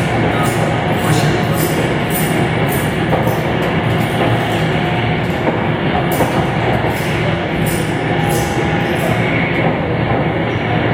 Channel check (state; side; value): identical; both; correlation 1.00